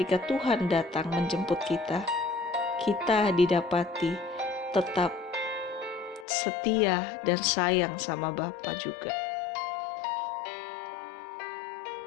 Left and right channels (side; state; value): right; drops out; at 6.2 s